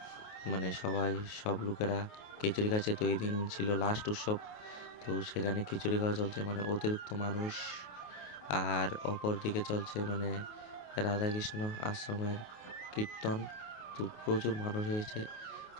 মানে সব লোকেরা খিচুড়ি খাচ্ছে। তো এই দিন ছিল লাস্ট উৎসব, তো সেখানে খিচুড়ি খাওয়া চলছে, মানে অতিরিক্ত মানুষ। আর অপর দিকে চলছে মানে রাধাকৃষ্ণ আশ্রমের কীর্তন। তো প্রচুর মানুষ হয়েছে। তো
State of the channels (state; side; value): late; right; 28 ms